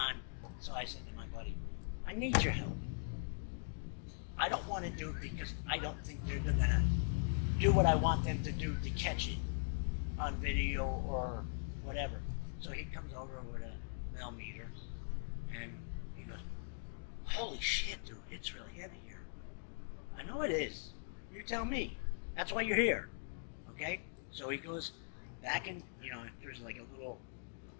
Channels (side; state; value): right; silent; digital silence